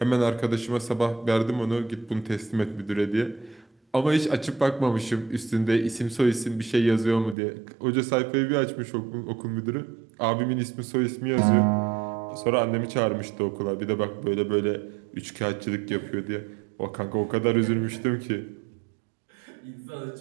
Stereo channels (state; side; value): drops out; left; at 7.4 s